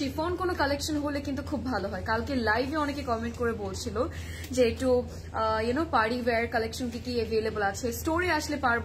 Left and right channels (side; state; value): both; identical; correlation 1.00